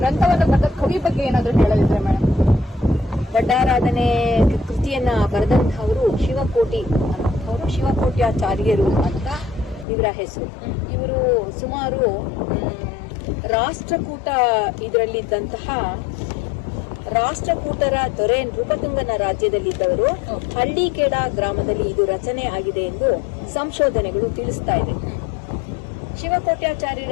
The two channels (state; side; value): drops out; right; at 9.9 s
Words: ಬರೆದ ಕವಿ ಬಗ್ಗೆ ಏನಾದ್ರೂ ಹೇಳಲಿದ್ರೆ ಮೇಡಮ್? ಒಡ್ಡಾರಾಧನೆ ಕೃತಿಯನ್ನ ಬರೆದಂತಹವರು ಶಿವಕೋಟ್ಯಾಚಾರ್ಯರು ಅಂತ ಇವರ ಹೆಸರು. ಇವರು ಸುಮಾರು ಇದರಲ್ಲಿದ್ದಂತಹ ರಾಷ್ಟ್ರಕೂಟರ ದೊರೆ ನೃಪತುಂಗನ ರಾಜ್ಯದಲ್ಲಿದ್ದವರು ಹಳ್ಳಿಕೇಡ ಗ್ರಾಮದಲ್ಲಿ ಇದು ರಚನೆ ಆಗಿದೆ ಎಂದು ಸಂಶೋಧನೆಗಳು ತಿಳಿಸ್ತಾ ಇದೆ.